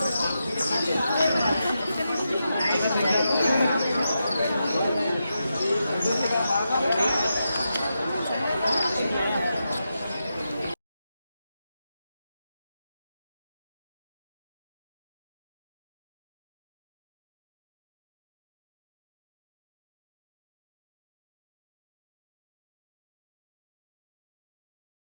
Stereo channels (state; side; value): inverted; both; correlation -0.87